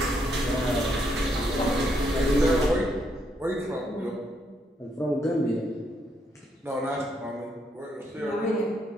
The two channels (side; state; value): both; normal; correlation 0.75